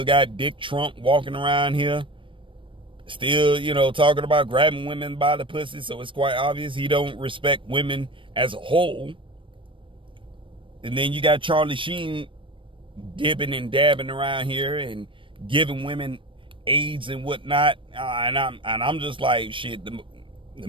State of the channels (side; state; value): left; late; 0.25 ms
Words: got Dick Trump walking around here. Still, talking about grabbing women by the pussy. So it's quite obvious he don't respect women as a whole. And then you got Charlie Sheen dipping and dabbing around here and giving women AIDS and whatnot. And I'm just like, shit, the